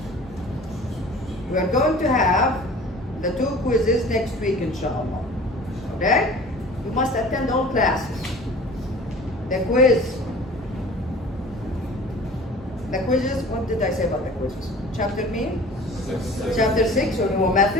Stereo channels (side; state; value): both; normal; correlation 0.44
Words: We are going to have the 2 quizzes next week, inshallah. Okay? You must attend all classes. The quizzes, what did I say about the quizzes? Chapter mean? Chapter 6 on your